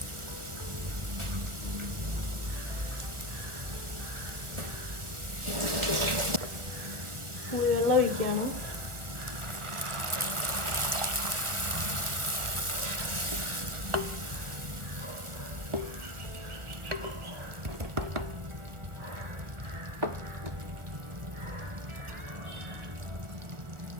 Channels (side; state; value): left; late; 1.2 ms